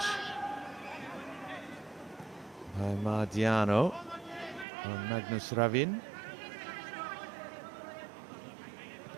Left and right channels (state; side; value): drops out; left; at 4.7 s